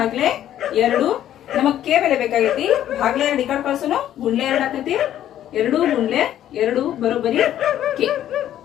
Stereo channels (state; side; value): quieter; right; 11.6 dB